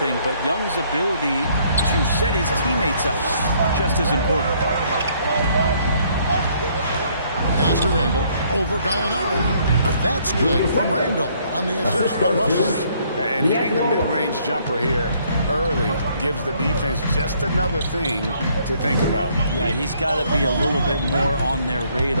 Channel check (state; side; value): inverted; both; correlation -0.65